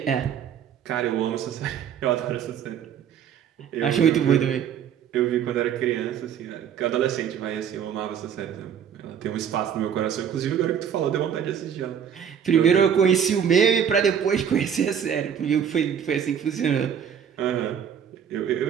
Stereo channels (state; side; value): quieter; left; 8.3 dB